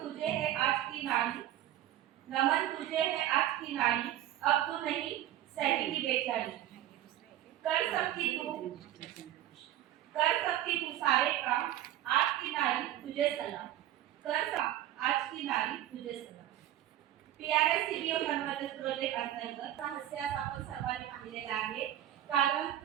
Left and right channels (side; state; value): left; quieter; 12.9 dB